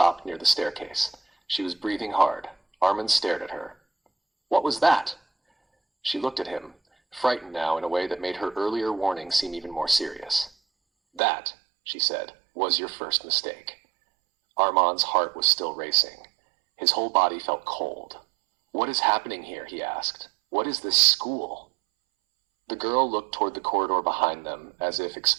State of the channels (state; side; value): drops out; left; at 11.2 s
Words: near the staircase. She was breathing hard. Arman stared at her. "What was that?" She looked at him, frightened now in a way that made her earlier warning seem even more serious. "That," she said, "was your first mistake." Armand's heart was still racing. His whole body felt cold. "What is happening here?" he asked. "What is this school?" The girl looked toward the corridor behind them, as if